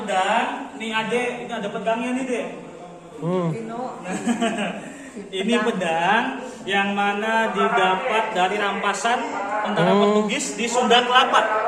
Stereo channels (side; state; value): both; identical; correlation 1.00